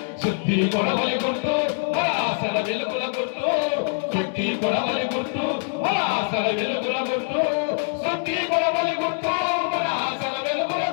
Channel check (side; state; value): right; silent; digital silence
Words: శుద్ధి కొడవలి గుర్తు మన ఆశల వెలుగుల గుర్తు శుద్ధి కొడవలి గుర్తు మన ఆశల వెలుగుల గుర్తు శుద్ధి కొడవలి గుర్తు మన ఆశల వెలుగుల